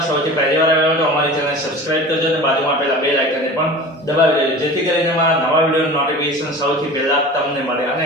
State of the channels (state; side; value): normal; both; correlation 0.37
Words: સૌથી પહેલી વાર આવ્યા હોય તો અમારી ચેનલને સબસ્ક્રાઇબ કરજો અને બાજુમાં આપેલા બેલ આઇકનને પણ દબાવી દેજો જેથી કરીને અમારા નવા વિડીયોનું નોટિફિકેશન સૌથી પહેલા તમને મળે। અને